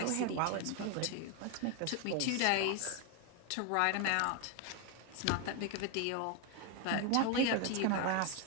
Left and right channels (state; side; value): different; both; correlation 0.01